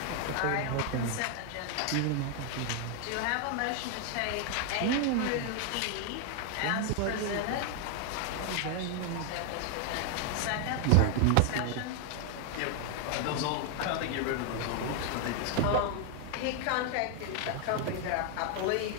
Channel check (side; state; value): both; different; correlation 0.01